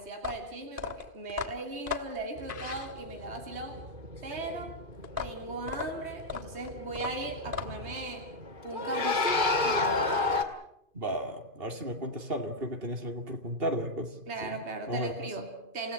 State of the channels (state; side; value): late; left; 2.5 ms